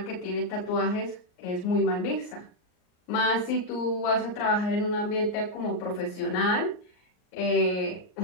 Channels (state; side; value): late; right; 39 ms